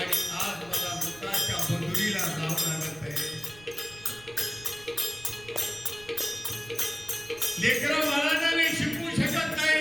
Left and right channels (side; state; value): right; noise; rumble, 22 dB below the sound